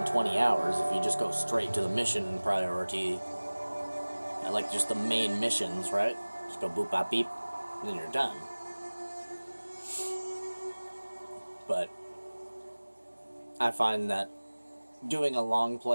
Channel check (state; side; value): inverted; both; correlation -1.00